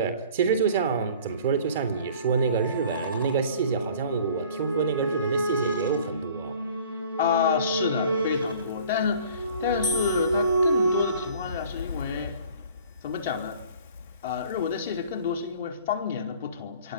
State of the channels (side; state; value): both; inverted; correlation -0.50